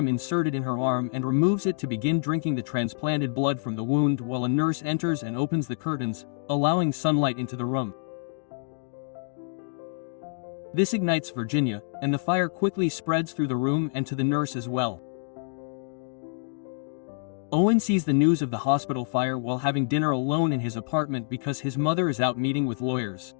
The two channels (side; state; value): right; silent; digital silence